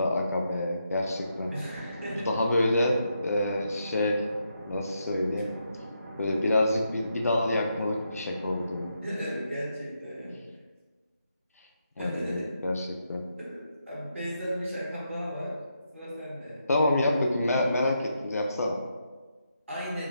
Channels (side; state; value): both; inverted; correlation -0.81